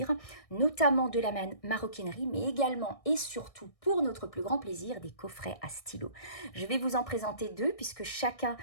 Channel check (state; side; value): late; right; 1.6 ms